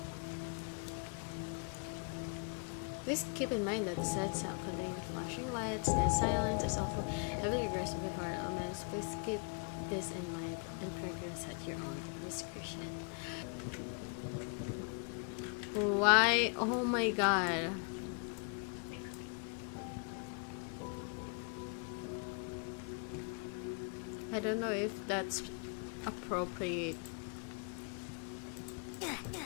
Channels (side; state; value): right; quieter; 37.9 dB